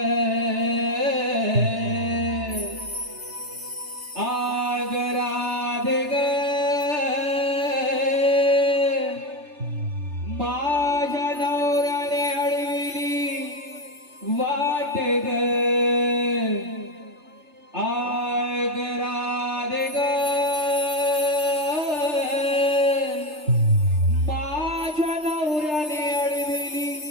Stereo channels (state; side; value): late; left; 3.3 ms